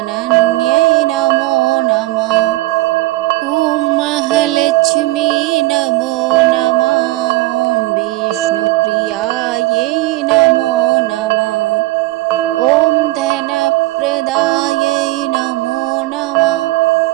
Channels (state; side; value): quieter; left; 19.1 dB